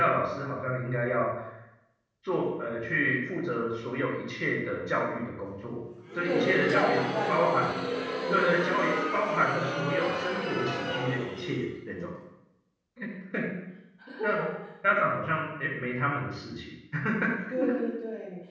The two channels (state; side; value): identical; both; correlation 1.00